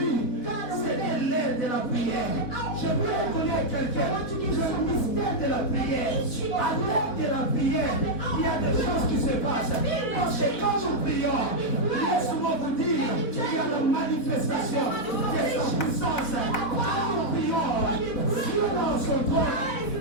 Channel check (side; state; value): right; late; 4.1 ms